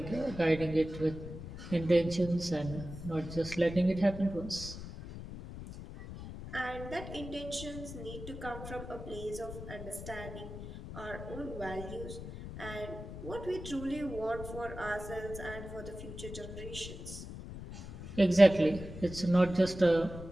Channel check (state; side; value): noise; left; rumble, 10 dB below the sound